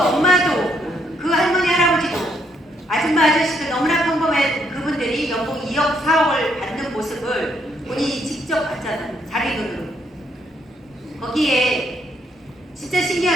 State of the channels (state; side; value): normal; both; correlation 0.73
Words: 엄마도, 그 할머니, 할아버지도, 아줌마, 아저씨도 너무나 평범한 그분들이 연봉 2억, 4억을 받는 모습을 본인이 직접 봤잖아요. 자기 눈으로. 거기에 진짜